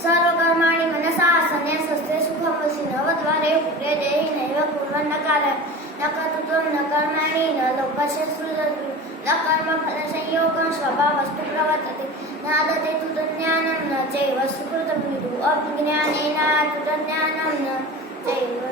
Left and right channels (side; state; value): both; normal; correlation 0.33